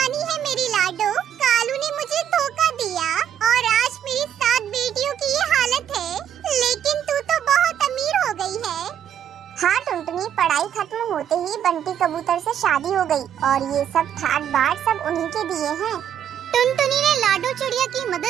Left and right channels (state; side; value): quieter; left; 9.5 dB